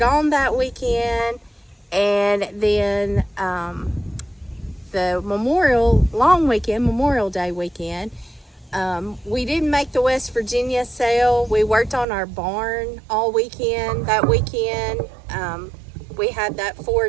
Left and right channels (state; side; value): drops out; left; at 12.1 s